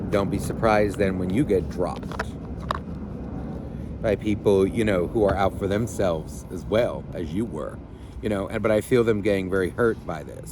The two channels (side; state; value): both; identical; correlation 1.00